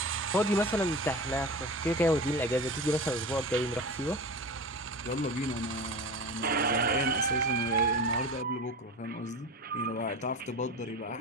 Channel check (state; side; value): normal; both; correlation 0.30